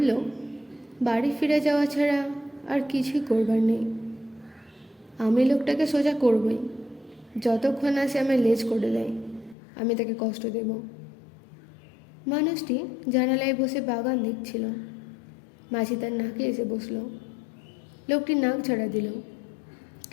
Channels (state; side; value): drops out; right; at 9.6 s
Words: বাড়ি ফিরে যাওয়া ছাড়া আর কিছুই করবার নেই। আমি লোকটাকে সোজা করবই, যতক্ষণ না সে আমায় লেজ করে দেয় আমি তাকে কষ্ট দেব। মানুষটি জানালায় বসে বাগান দেখছিল। মাঝি তার নাকে এসে বসল। লোকটি নাক ঝাড়া দিল,